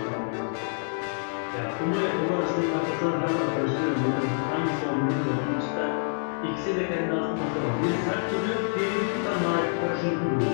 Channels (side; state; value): right; silent; 60 dB below the other